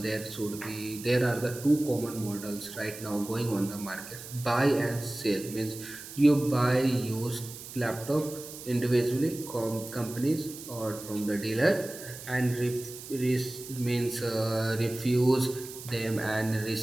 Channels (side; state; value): right; noise; hiss, 13 dB below the sound